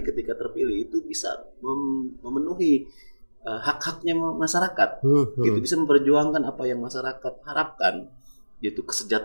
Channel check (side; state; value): both; inverted; correlation -1.00